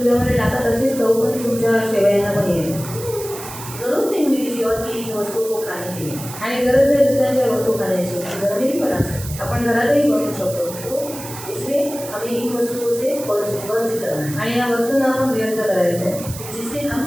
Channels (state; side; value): noise; right; hiss, 12 dB below the sound